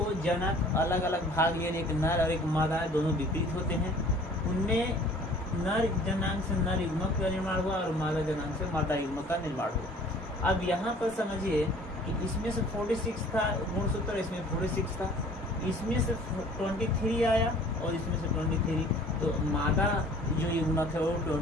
जनक अलग अलग भाग लिए, एक नर और एक मादा, दोनों विपरीत होते हैं। उनमें नर जनांग से नर युग्मक का निर्माण हुआ और मादा जनांग से मादा युग्मक का निर्माण हुआ। अब यहाँ पर समझिए कि इसमें से 46 था गुणसूत्र, इसमें 46 था, इसमें से 23 आया और इसमें से 23, तो मादा जो युग्मक है वो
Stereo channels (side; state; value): both; normal; correlation 0.51